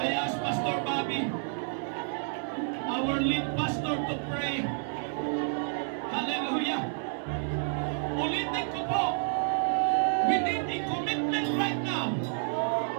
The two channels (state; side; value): silent; left; 58 dB below the other